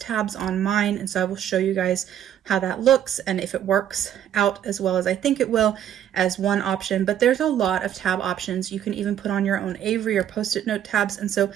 on mine, and so I will show you guys how that looks and if it works out as well as I think it will as one option. But there's a lot of tab options. You can even put on your own Avery or Post-it note tabs, and so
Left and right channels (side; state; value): left; quieter; 10.4 dB